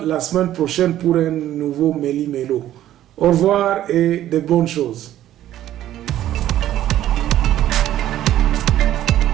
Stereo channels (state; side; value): quieter; left; 12.7 dB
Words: la semaine prochaine pour un nouveau Méli Mélo. Au revoir et de bonnes choses.